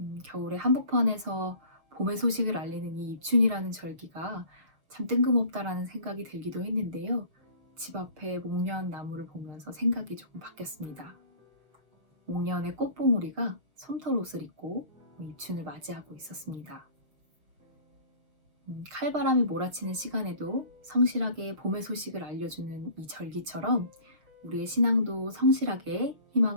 겨울의 한복판에서 봄의 소식을 알리는 이 입춘이라는 절기가 참 뜬금없다라는 생각이 들기도 했는데요. 집 앞에 목련 나무를 보면서 생각이 조금 바뀌었습니다. 목련의 꽃봉오리가 솜털옷을 입고 입춘을 맞이하고 있었습니다. 칼바람이 몰아치는 시간에도 성실하게 봄의 소식을 알려주는 이 절기처럼 우리의 신앙도 성실하게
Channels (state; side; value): late; left; 6.2 ms